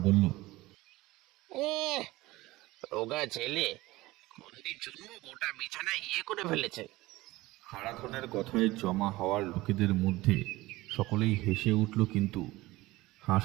বলল, রোগা ছেলে মন্দির জন্য গোটা বিছানা করে ফেলেছে। হারাধনের কথায় জমা হওয়ার লোকেদের মধ্যে সকলেই হেসে উঠল, কিন্তু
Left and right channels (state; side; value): quieter; left; 19.2 dB